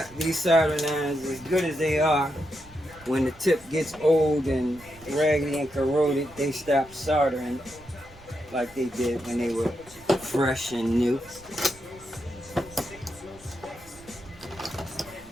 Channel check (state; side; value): noise; right; rumble, 23 dB below the sound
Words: soldering irons, as good as they are, when the tip gets old and raggedy and corroded, they stop soldering like they did when they were fresh and new.